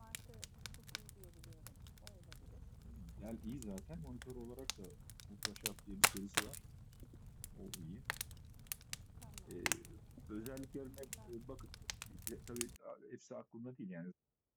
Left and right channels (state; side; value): identical; both; correlation 1.00